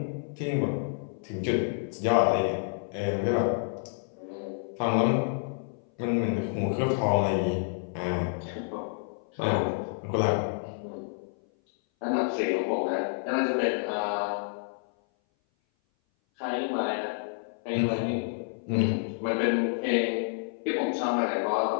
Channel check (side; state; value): right; silent; 57 dB below the other